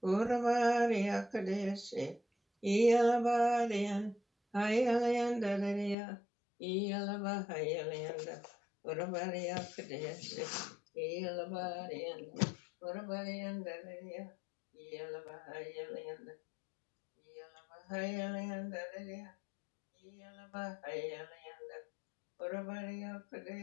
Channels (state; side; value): drops out; right; at 6.0 s